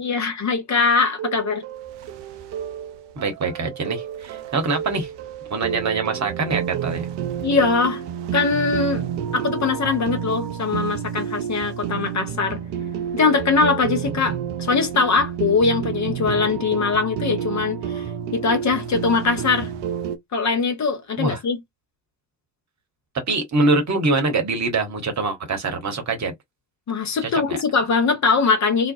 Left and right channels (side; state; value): both; normal; correlation 0.01